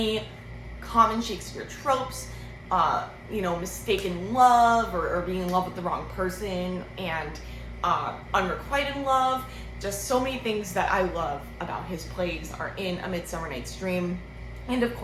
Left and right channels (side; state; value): both; identical; correlation 1.00